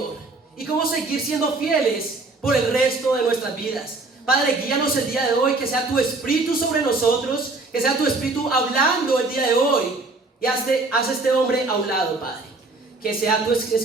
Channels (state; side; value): quieter; left; 3.4 dB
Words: y cómo seguir siendo fieles por el resto de nuestras vidas. Padre, guíanos el día de hoy, que sea tu Espíritu sobre nosotros, que sea tu Espíritu hablando el día de hoy, y haz este hombre a un lado, Padre. Que sea tus